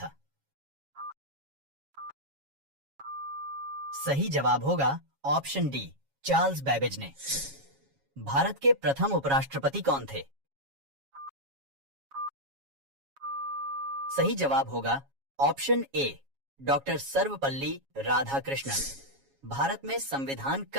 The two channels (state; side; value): late; left; 7.3 ms